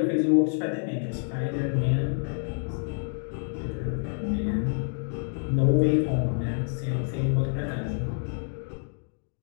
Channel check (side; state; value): right; silent; digital silence